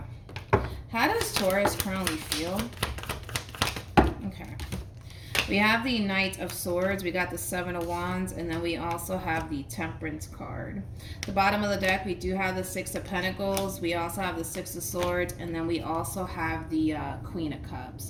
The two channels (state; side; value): identical; both; correlation 1.00